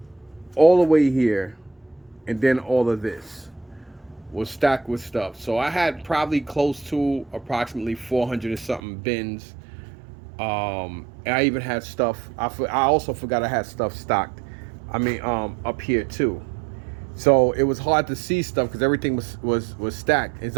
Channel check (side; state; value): left; drops out; at 8.8 s